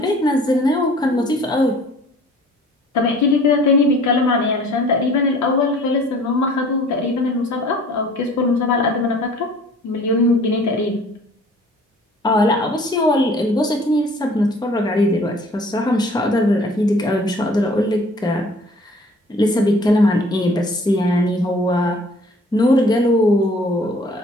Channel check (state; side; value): normal; both; correlation 0.52